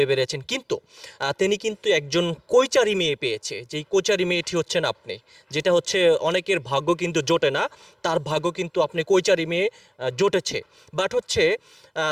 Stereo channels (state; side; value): identical; both; correlation 1.00